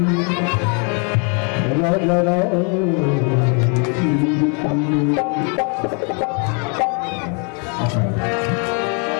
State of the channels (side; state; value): right; quieter; 37.6 dB